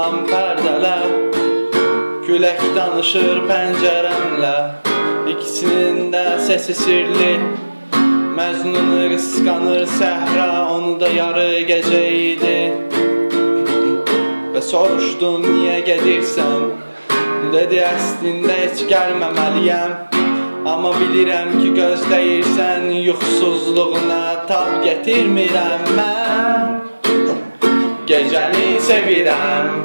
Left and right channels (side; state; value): both; inverted; correlation -1.00